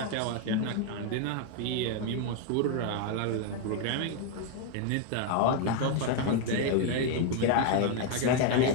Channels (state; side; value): different; both; correlation 0.01